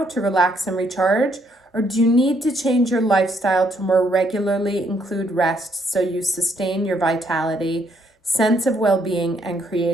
to relax and recharge? Or do you need to change your lifestyle to more regularly include rest so you sustain your vitality, sense of well-being, and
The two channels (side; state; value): both; normal; correlation 0.71